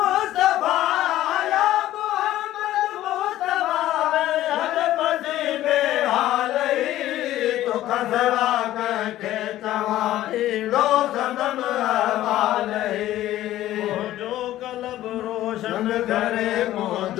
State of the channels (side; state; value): right; quieter; 14.1 dB